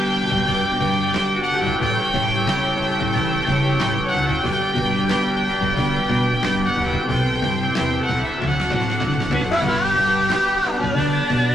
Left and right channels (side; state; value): both; normal; correlation 0.82